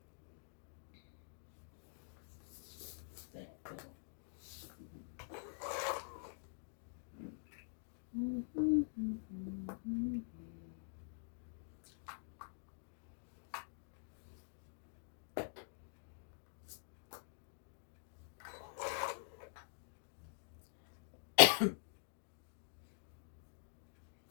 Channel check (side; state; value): right; silent; digital silence